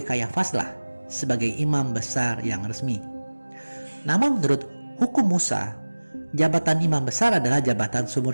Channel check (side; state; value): both; inverted; correlation -1.00